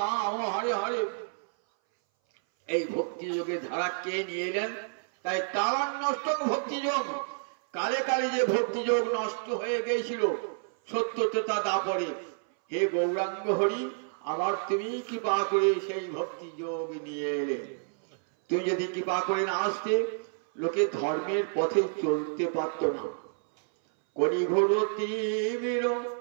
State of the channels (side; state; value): left; silent; 58 dB below the other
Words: হরে হরে। এই ভক্তি যোগের ধারা কে নিয়ে এলেন? তাই কালান্নষ্ট ভক্তি যোগ। কালে কালে যে ভক্তি যোগ নষ্ট হয়ে গিয়েছিল সত্য ত্রেতা দাপরে, হে গৌরাঙ্গ হরি, আবার তুমি কৃপা করে সেই ভক্তি যোগ নিয়ে এলে। তুমি যদি কৃপা করে না আসতে, লোকে ধর্মের পথে চলতে পারত না। কলিঘোর তীব্র